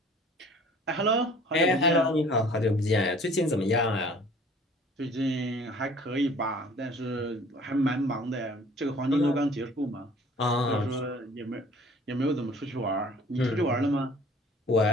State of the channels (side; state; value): both; normal; correlation 0.51